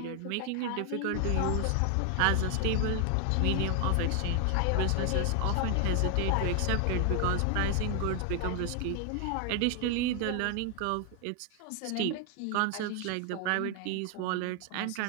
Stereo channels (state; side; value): different; both; correlation 0.00